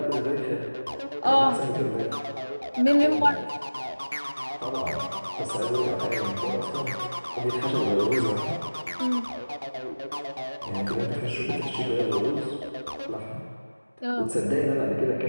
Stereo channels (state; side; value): inverted; both; correlation -1.00